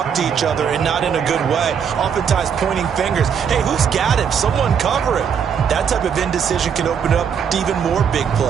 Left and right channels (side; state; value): left; quieter; 7.4 dB